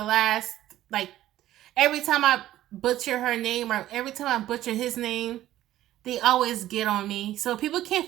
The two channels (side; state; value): left; quieter; 13.9 dB